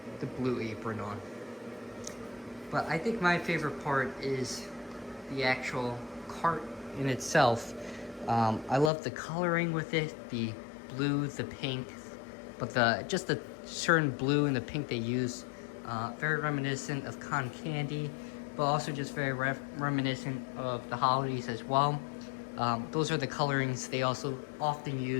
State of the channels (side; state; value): right; drops out; at 8.9 s